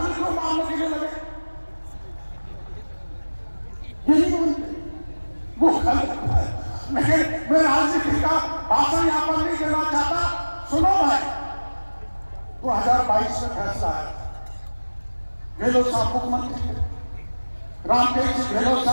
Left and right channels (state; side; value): inverted; both; correlation -1.00